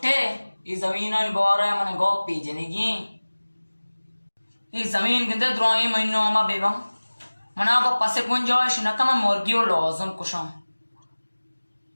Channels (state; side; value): inverted; both; correlation -1.00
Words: ಈ ಜಮೀನ ಬಾರ ಮನೆ ಗೋಪಿ ಜನಿಗಿ ಈ ಜಮೀನ್ ಗಿಂದೆ ದ್ರೋಯಿ ಮೈನೋ ಅಮ್ಮ ಬೇಬಂ ಮನಾಗೋ ಪಸೆ ಗುಂಜಾಯಿಶ ನಕಮ ಮುರ್ಗಿಯೋ ಲಾಜಮ್ ಕುಶಂ